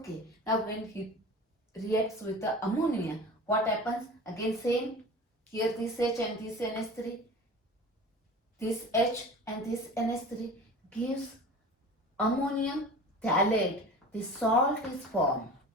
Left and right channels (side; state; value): both; normal; correlation 0.37